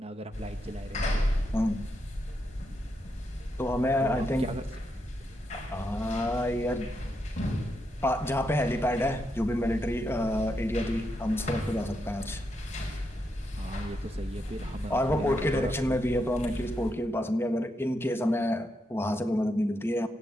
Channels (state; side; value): normal; both; correlation 0.82